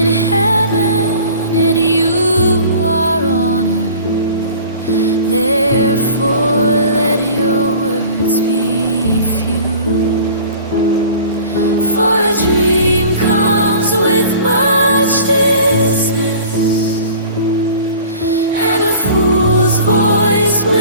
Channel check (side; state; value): both; inverted; correlation -0.44